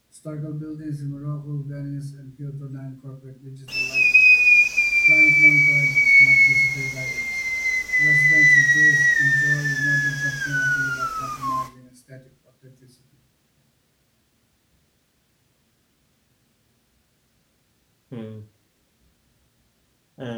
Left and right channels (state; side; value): identical; both; correlation 1.00